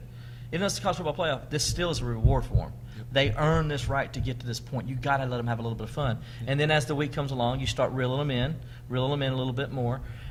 even though it's the college football playoff, this still is a reward for them. They earn this right to get to this point. You got to let them have a little bit of fun. And then as the week comes along, you start reeling them in a little bit more.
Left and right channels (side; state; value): both; identical; correlation 1.00